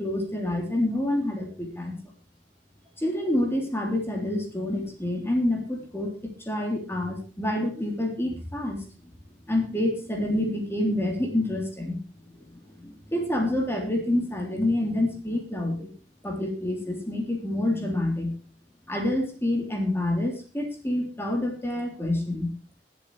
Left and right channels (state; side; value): normal; both; correlation 0.80